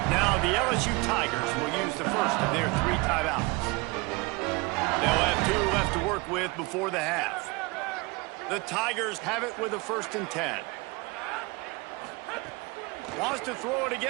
Now the LSU Tigers will use the first of their 3 timeouts. They'll have 2 left to work with before the half. The Tigers have it with a 1st and 10. Wants to throw it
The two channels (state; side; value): quieter; left; 25.6 dB